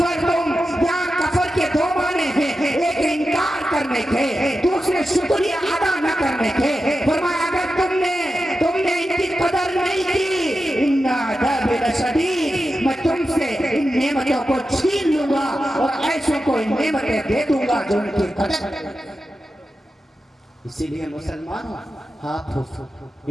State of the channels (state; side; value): normal; both; correlation 0.91